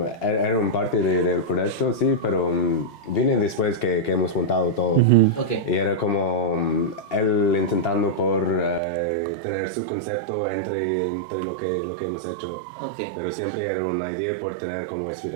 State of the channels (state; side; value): drops out; left; at 8.8 s